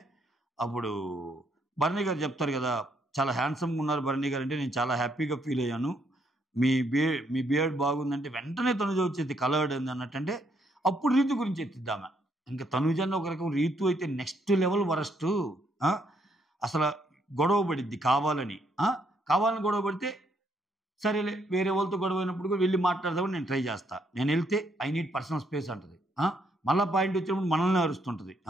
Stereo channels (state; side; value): normal; both; correlation 0.73